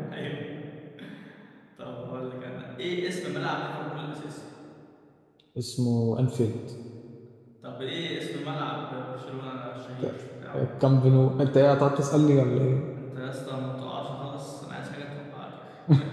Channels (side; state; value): both; identical; correlation 1.00